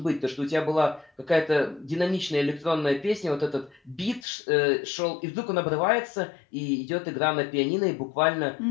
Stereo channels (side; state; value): right; drops out; at 4.2 s